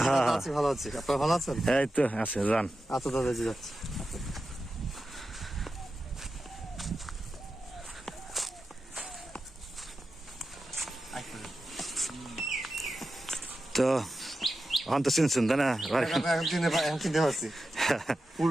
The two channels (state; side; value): normal; both; correlation 0.91